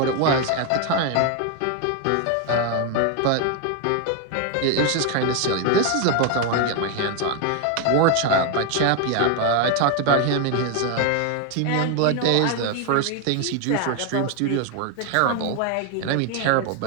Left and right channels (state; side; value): different; both; correlation 0.01